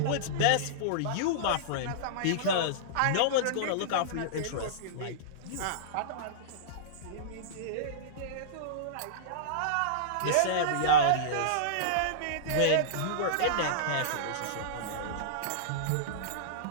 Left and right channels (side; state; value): both; different; correlation -0.03